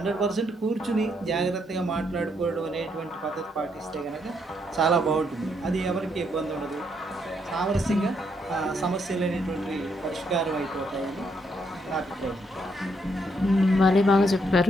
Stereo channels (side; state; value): both; normal; correlation 0.75